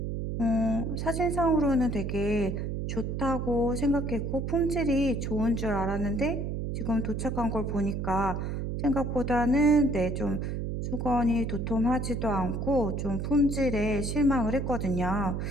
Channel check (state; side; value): noise; right; hum, 2 dB below the sound